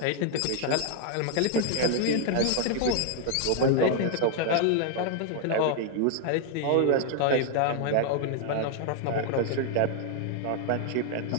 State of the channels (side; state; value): both; different; correlation 0.00